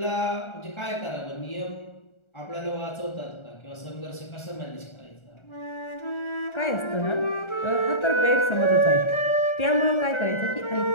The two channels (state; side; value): late; right; 1.4 ms